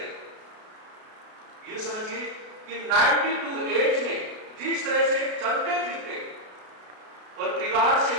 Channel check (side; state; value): left; late; 33 ms